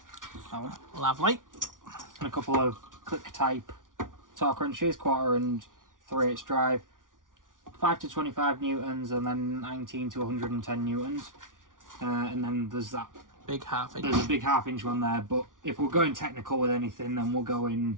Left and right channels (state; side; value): late; left; 0.88 ms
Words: That one. Lovely. And a couple of click type torque wrenches, 1/4 and 3/8 drive. 5 to 25 newtons and then 19 to 110 newtons. And then there's that Big half-inch. There's a big 1/2 one there, but if we're going technical with anything, then we'll go in